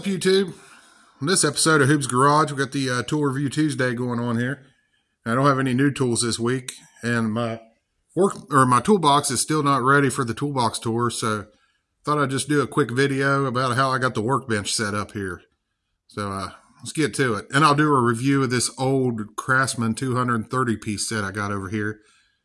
YouTube? In this episode of Hoob's Garage, we got the Tool Review Tuesday going on here. I don't have any new tools this week, and my toolbox is still not ready for the toolbox tour, so thought I'd just do a quick video about how I got the workbench set up here. So let's get to it. And I'll do a review of this old Craftsman 230-piece set I got over here.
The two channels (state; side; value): identical; both; correlation 1.00